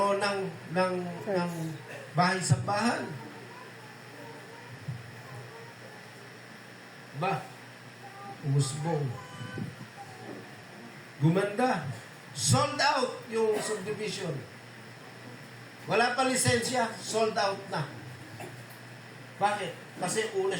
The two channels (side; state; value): both; identical; correlation 1.00